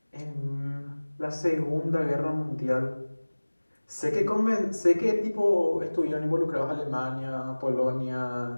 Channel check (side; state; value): both; inverted; correlation -1.00